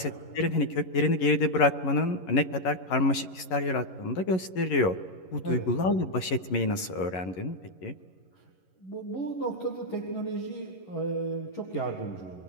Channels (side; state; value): right; late; 11 ms